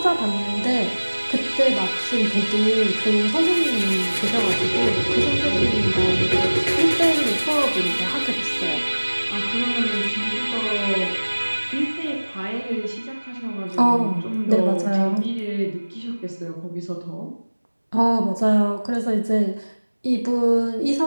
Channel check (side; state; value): both; inverted; correlation -1.00